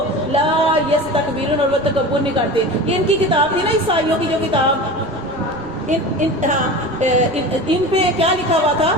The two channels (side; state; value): right; noise; rumble, 21 dB below the sound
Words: لا یستکبرون اور وہ تکبر نہیں کرتے، یہ ان کی کتاب تھی نا عیسائیوں کی جو کتاب ان پہ کیا لکھا ہوا تھا